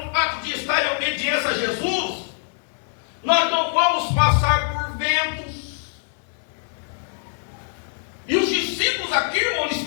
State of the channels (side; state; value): right; silent; digital silence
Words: fato de estar em obediência a Jesus, nós não vamos passar por ventos. E os discípulos aqui, irmão,